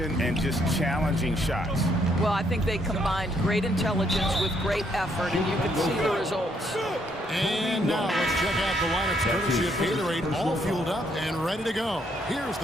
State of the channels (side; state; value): both; normal; correlation 0.72